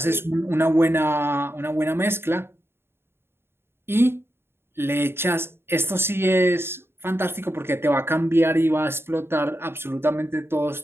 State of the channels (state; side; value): late; left; 0.11 ms